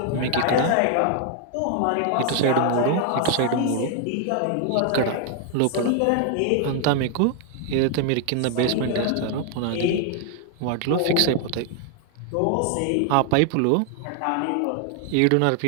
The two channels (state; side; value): different; both; correlation 0.00